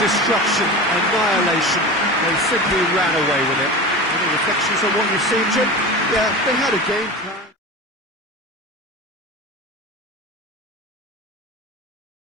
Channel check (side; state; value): both; normal; correlation 0.29